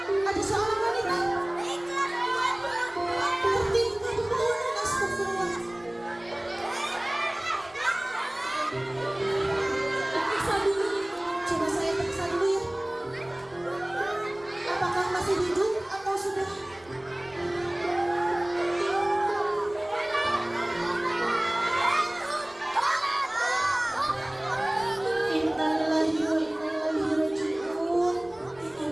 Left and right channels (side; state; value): right; noise; rumble, 29 dB below the sound